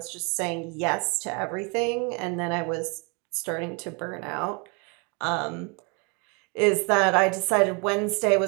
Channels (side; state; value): left; quieter; 31.9 dB